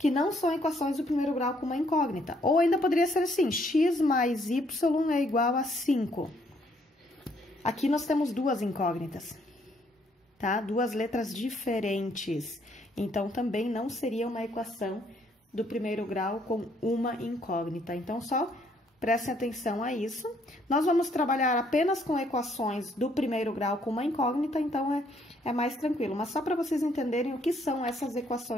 não são equações do primeiro grau com uma incógnita. Ou ainda poderia ser assim, x mais y é igual a 5. Aqui nós temos duas incógnitas, tá? Duas letras diferentes. Então, também não seria uma equação do primeiro grau com uma incógnita. Então, só prestem atenção a isso. Nós vamos trabalhar apenas com equações do primeiro grau com uma incógnita, então é mais tranquilo. Mas só para vocês entenderem o que são essas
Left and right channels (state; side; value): normal; both; correlation 0.68